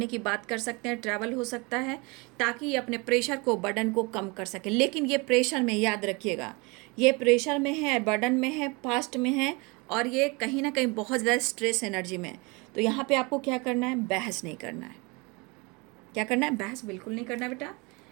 की बात कर सकते हैं, ट्रैवल हो सकता है, ताकि ये अपने प्रेशर को, बर्डन को कम कर सकें। लेकिन ये प्रेशर में, याद रखिएगा, ये प्रेशर में है, बर्डन में है, पास्ट में है, और ये कहीं ना कहीं बहुत ज़्यादा स्ट्रेस एनर्जी में है। तो यहाँ पे आपको क्या करना है? बहस नहीं करना है। क्या करना है? बहस बिल्कुल नहीं करना बेटा,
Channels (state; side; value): quieter; left; 27.7 dB